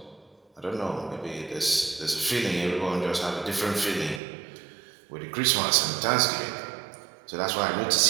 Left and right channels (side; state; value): left; drops out; at 4.2 s